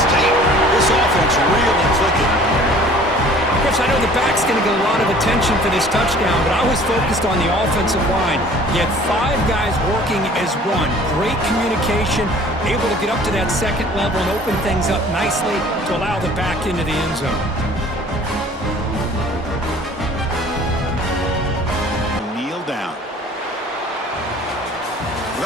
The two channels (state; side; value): normal; both; correlation 0.50